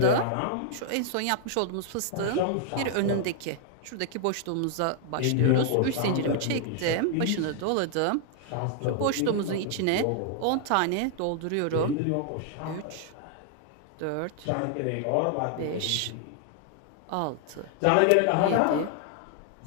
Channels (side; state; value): both; different; correlation 0.00